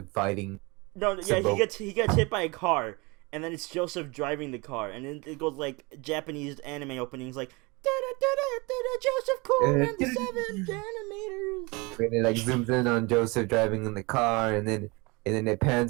fighting. he gets hit by a car, and then it's Joseph driving the car, and then it goes like Japanese anime openings like Joseph Coon and the 7 animators. And it like zooms in on Joseph driving in the car, and then it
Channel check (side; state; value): left; quieter; 26.6 dB